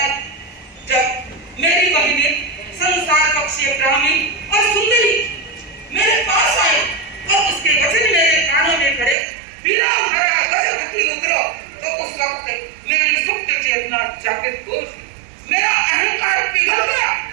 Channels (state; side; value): drops out; left; at 9.2 s